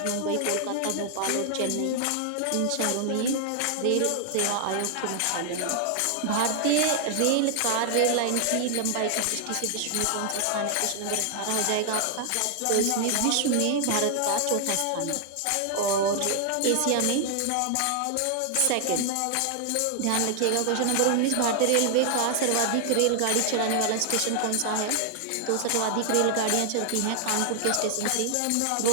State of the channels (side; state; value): both; different; correlation 0.00